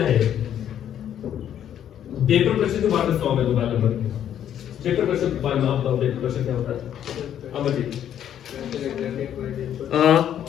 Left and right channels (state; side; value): quieter; right; 10.1 dB